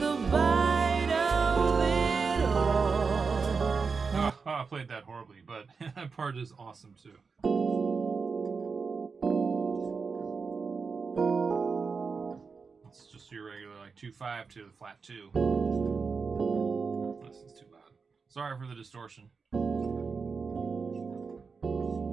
bite of it all. Oh, I played that horribly, but that part is awesome too. It's just your regular like 2-5 to the flat 2. This is too loud. Sorry for the distortion.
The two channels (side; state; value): left; quieter; 5.0 dB